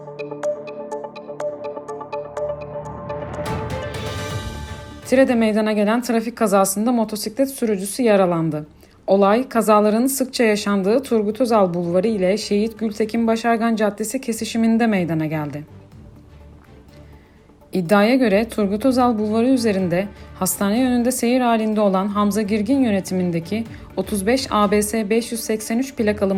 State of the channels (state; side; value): identical; both; correlation 1.00